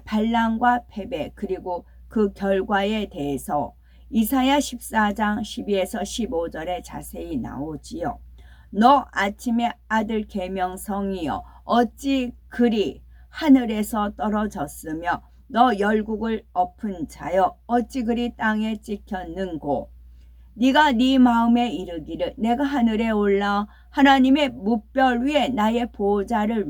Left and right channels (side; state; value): both; identical; correlation 1.00